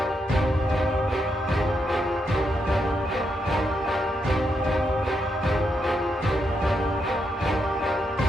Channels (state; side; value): normal; both; correlation 0.81